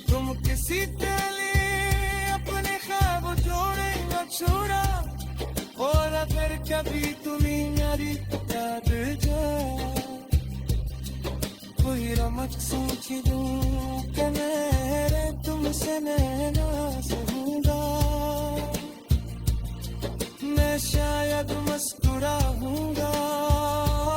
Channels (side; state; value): both; identical; correlation 1.00